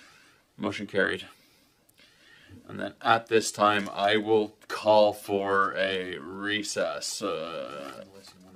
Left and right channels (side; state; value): both; identical; correlation 1.00